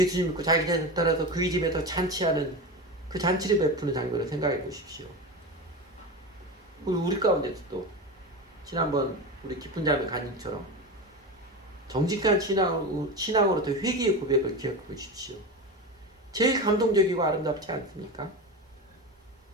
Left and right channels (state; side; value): normal; both; correlation 0.23